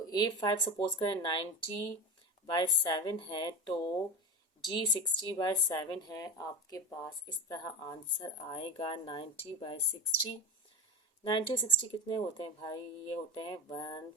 A5 सपोज करें 90 बाय 7 है, तो G 60 बाय 7 है। आपके पास इस तरह आंसर आएगा 90 बाय 60। 90 और 60 कितने होते हैं भाई, ये होते हैं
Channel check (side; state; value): both; normal; correlation 0.24